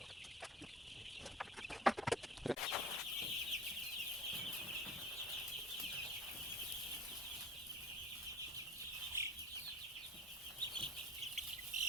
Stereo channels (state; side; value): normal; both; correlation 0.40